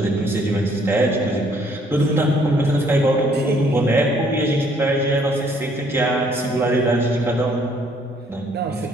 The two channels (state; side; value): normal; both; correlation 0.64